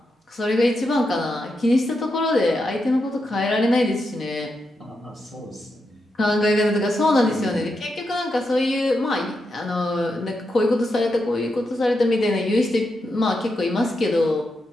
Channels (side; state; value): both; normal; correlation 0.85